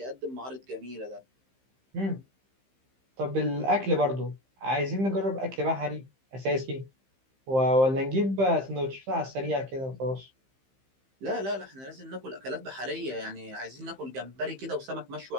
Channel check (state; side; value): late; left; 15 ms